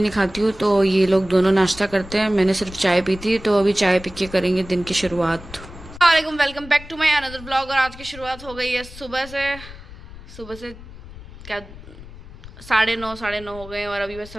नहीं खाती हूँ, तो ये लोग दोनों नाश्ता करते हैं। मैंने सिर्फ चाय पी थी, तो अभी चाय पी के करेंगे दिन की शुरुआत। वालेकुम, welcome back to my another vlog. और आज की शुरुआत हो गई है सुबह से क्या 9:30 9:30 हो गए और अभी बस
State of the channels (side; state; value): left; noise; rumble, 16 dB below the sound